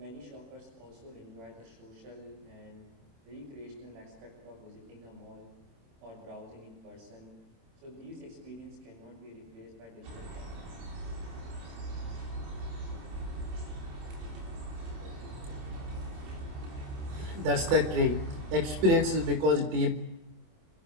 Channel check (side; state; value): left; late; 26 ms